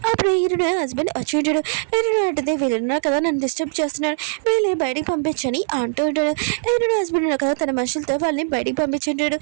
అప్పుడు ఈరుని హస్బెండ్ వచ్చి ఉంటాడు. ఈరుని అంటుంది, వీళ్ళున్నారు కదా నన్ను డిస్టర్బ్ చేస్తున్నాడు, వీళ్ళని బయటికి పంపించని అంటూ ఉంటాడు. ఈరుని హస్బెండ్ ఉన్నారు కదా తన మనుషులతో వాళ్ళని బయటికి పంపించుంటాడు.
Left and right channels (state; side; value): silent; left; 65 dB below the other